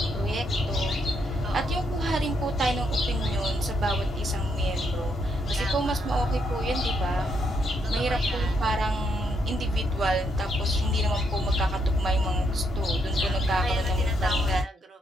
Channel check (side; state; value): both; normal; correlation 0.76